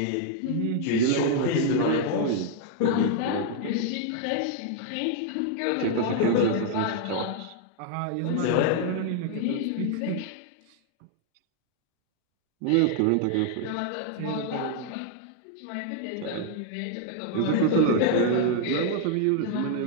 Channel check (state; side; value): different; both; correlation 0.00